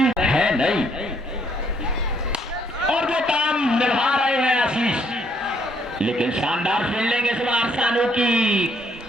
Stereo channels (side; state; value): both; normal; correlation 0.69